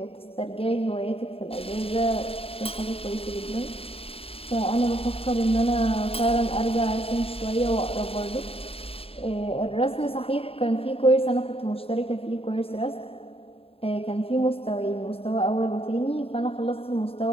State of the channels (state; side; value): late; right; 0.27 ms